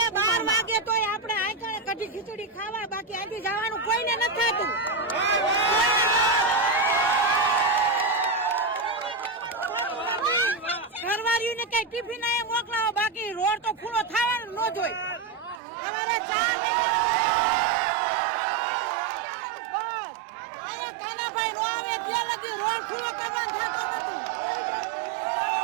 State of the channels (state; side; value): drops out; left; at 15.6 s